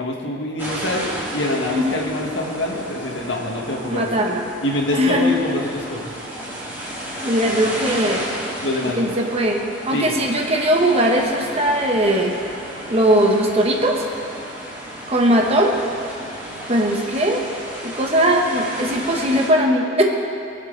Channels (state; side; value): normal; both; correlation 0.33